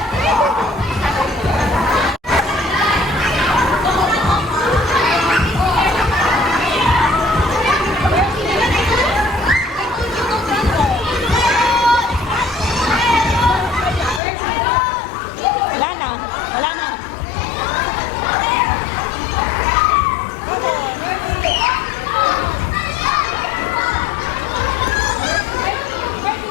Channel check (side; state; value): right; drops out; at 14.2 s